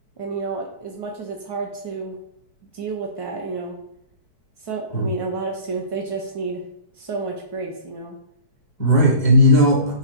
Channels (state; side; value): late; right; 4.6 ms